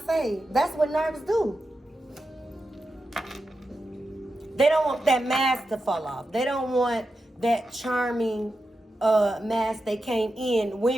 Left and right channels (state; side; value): normal; both; correlation 0.89